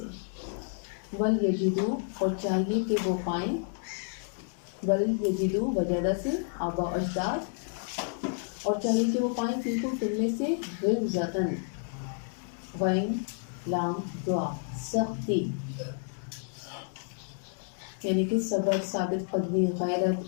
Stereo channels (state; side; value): silent; right; 57 dB below the other